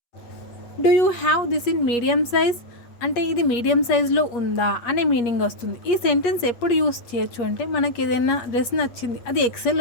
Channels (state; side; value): late; right; 8.4 ms